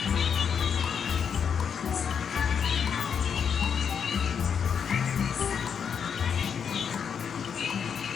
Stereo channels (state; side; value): quieter; right; 7.1 dB